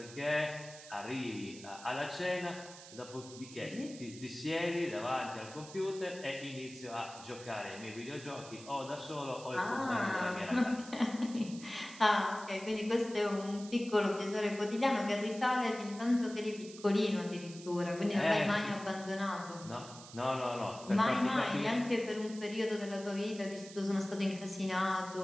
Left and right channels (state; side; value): noise; right; hiss, 16 dB below the sound